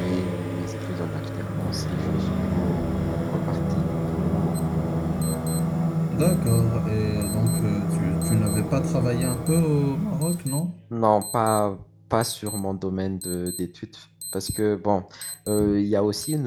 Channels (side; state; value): both; identical; correlation 1.00